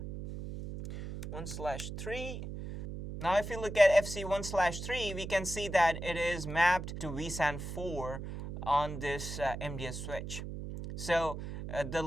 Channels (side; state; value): right; noise; hum, 7 dB below the sound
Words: 1/3. Now if you look at FC1/3, we can see that it is mapped to VSAN 4 on this MDS switch. So